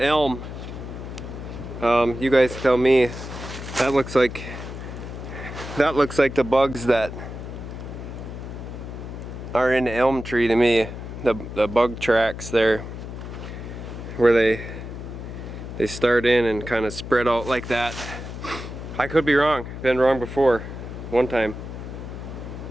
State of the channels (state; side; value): noise; left; hum, 9 dB below the sound